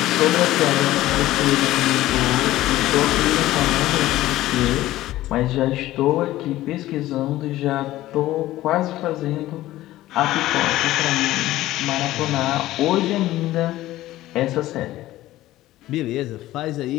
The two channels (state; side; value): quieter; right; 15.6 dB